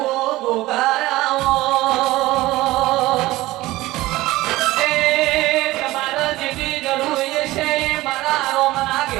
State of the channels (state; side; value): quieter; left; 18.1 dB